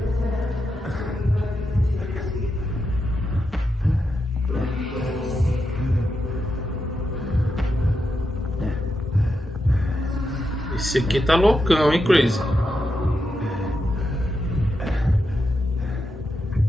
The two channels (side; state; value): both; normal; correlation 0.86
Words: Esse aqui tá loucão, hein, Crazy?